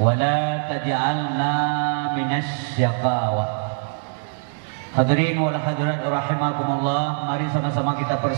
la taj'alna minas syaqawah. Hadirin wal hadirat rahimakumullah, mari sama-sama kita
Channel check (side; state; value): left; silent; digital silence